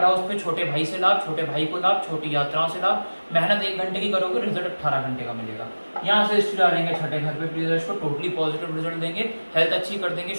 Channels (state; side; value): inverted; both; correlation -1.00